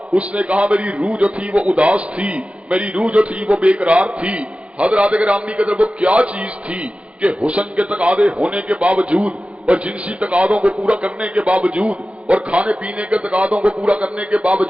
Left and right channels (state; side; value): late; left; 0.061 ms